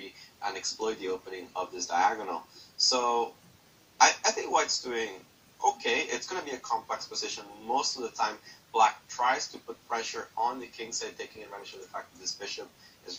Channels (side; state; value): both; identical; correlation 1.00